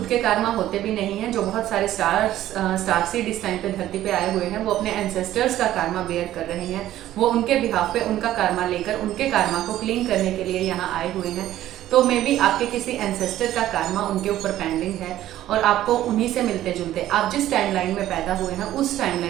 के कर्मा होते भी नहीं हैं। जो बहुत सारे स्टार सीड इस टाइम पे धरती पे आए हुए हैं वो अपने एंसेस्टर्स का कर्मा बेयर कर रहे हैं। वो उनके बिहाफ पे उनका कर्मा लेकर उनके कर्मा को क्लीन करने के लिए यहाँ आए हुए हैं। तो मे बी आपके किसी एंसेस्टर का कर्मा उनके ऊपर पेंडिंग है और आपको उन्हीं से मिलते जुलते आप जिस टाइमलाइन में पैदा हुए हैं उस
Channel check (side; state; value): left; quieter; 13.4 dB